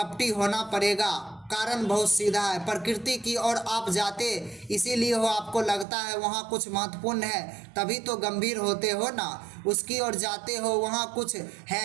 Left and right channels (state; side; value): drops out; left; at 5.9 s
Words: होना पड़ेगा, कारण बहुत सीधा है। प्रकृति की ओर आप जाते इसीलिए हो, आपको लगता है वहाँ कुछ महत्वपूर्ण है, तभी तो गंभीर होते हो ना। उसकी ओर जाते हो, वहाँ कुछ